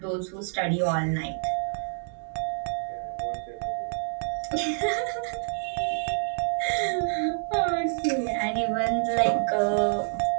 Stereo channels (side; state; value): left; silent; digital silence